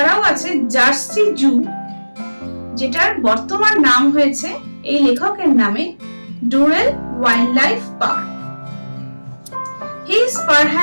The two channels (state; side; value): inverted; both; correlation -1.00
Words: আছে জার্সি জু, যেটার বর্তমান নাম হয়েছে এই লেখকের নামে Durrell wildlife park. He is